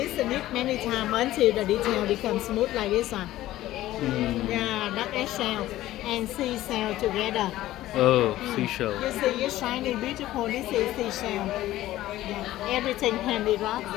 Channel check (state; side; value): quieter; right; 15.1 dB